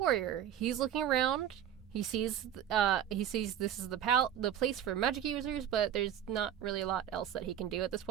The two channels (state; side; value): quieter; left; 10.0 dB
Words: He's looking around. He sees this is the place for magic users, but there's not really a lot else that he can do at this